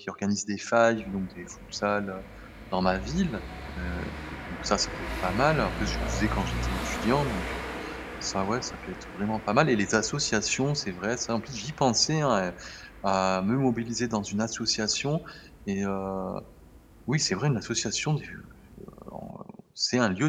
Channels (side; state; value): both; identical; correlation 1.00